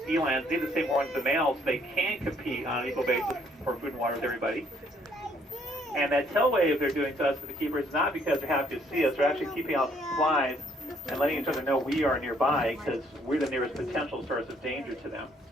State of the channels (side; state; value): both; normal; correlation 0.66